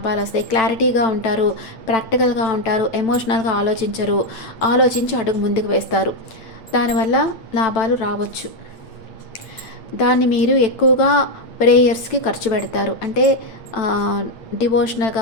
వస్తాయి. క్లారిటీగా ఉంటారు, ప్రాక్టికల్గా ఉంటారు, ఎమోషనల్గా ఆలోచించి అడుగు ముందుకు వేస్తారు. దానివల్ల లాభాలు రావచ్చు. దాన్ని మీరు ఎక్కువగా ప్రేయర్స్కి ఖర్చు పెడతారు. అంటే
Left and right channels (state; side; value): late; right; 9.0 ms